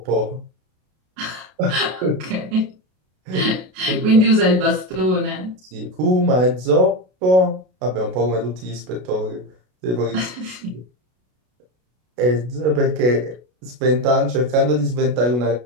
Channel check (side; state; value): left; late; 33 ms